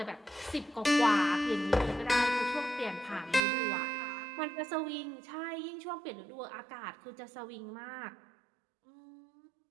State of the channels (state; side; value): drops out; left; at 3.4 s